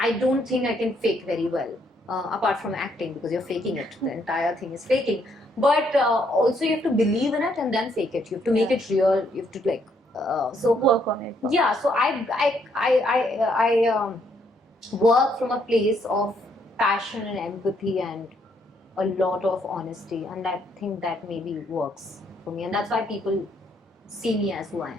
don't think I can fake very well. Apart from acting, because you're faking it, the entire thing is faking. But also you have to believe in it and then fake it. You have to make it real. You have to so work on it. Yeah, so I work from a place of passion and empathy and a lot of honesty, and I think that maybe works for me, and that's why people see me as who I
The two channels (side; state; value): both; normal; correlation 0.71